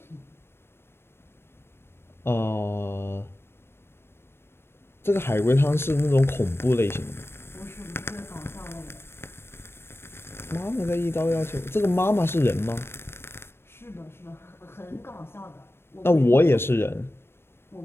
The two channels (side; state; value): right; late; 0.12 ms